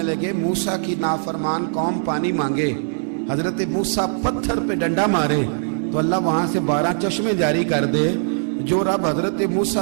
लगे मूसा की नाफरमान कौम पानी मांगे, हजरत मूसा पत्थर पे डंडा मारे तो अल्लाह वहां से 12 चश्मे जारी कर दे। जो रब हजरत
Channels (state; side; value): silent; left; digital silence